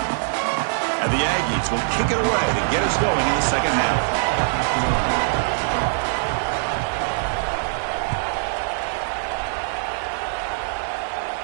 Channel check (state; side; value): silent; left; digital silence